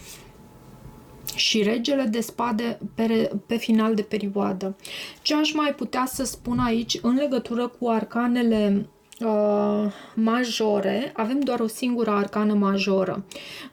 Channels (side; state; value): both; identical; correlation 1.00